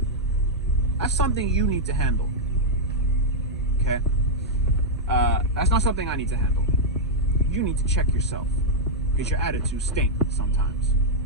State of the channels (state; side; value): normal; both; correlation -0.04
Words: that's something you need to handle. Okay? That's not something I need to handle. You need to check yourself, because your attitude stinks sometimes.